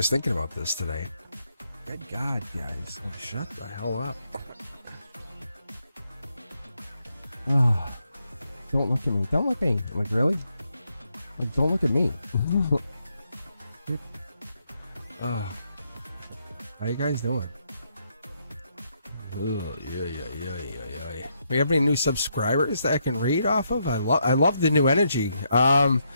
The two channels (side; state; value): both; inverted; correlation -0.78